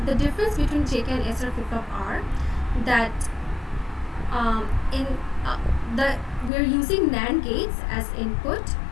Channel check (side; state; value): right; drops out; at 6.5 s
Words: the difference between JK and SR flip-flop are that we're using NAND gates as input